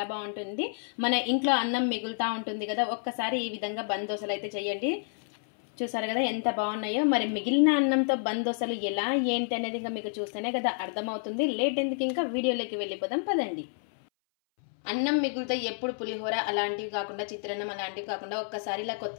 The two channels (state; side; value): silent; right; 58 dB below the other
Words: బాగుంటుంది. మన ఇంట్లో అన్నం మిగులుతా ఉంటుంది కదా, ఒక్కసారి ఈ విధంగా బంద్ దోశలు అయితే చేయండి. చూసారు కదా ఎంత బాగున్నాయో. మరి మిగిలిన అన్నంతో బంద్ దోశలు ఎలా ఏంటి అనేది ఇంకా మీకు చూస్తేనే కదా అర్థమవుతుంది. లేట్ ఎందుకు, ఇంకా వీడియోలోకి వెళ్ళిపోదాం పదండి. అన్నం మిగులుతో ఎప్పుడు పులిహోర అలాంటివి కాకుండా, చిత్రాన్నం అలాంటివి కాకుండా ఒక్కసారి ఇలా